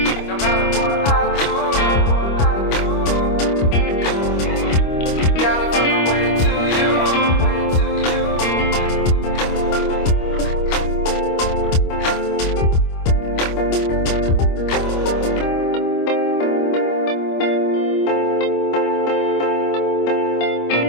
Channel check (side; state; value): right; late; 25 ms